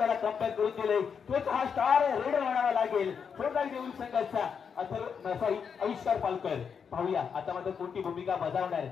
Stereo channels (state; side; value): quieter; right; 6.6 dB